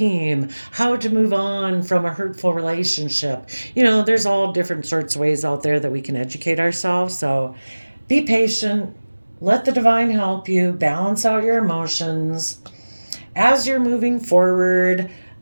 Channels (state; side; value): inverted; both; correlation -1.00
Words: how to move on from a hurtful relationship. There's all different sorts of ways out there that we can educate ourselves. So be patient, let the divine help you balance out your emotions as you're moving forward.